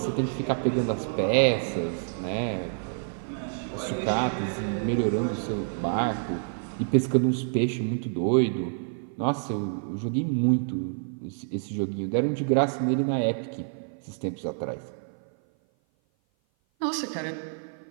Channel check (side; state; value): left; silent; 56 dB below the other